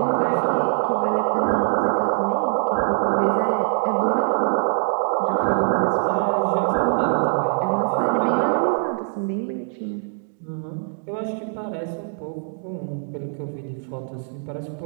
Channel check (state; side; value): silent; left; digital silence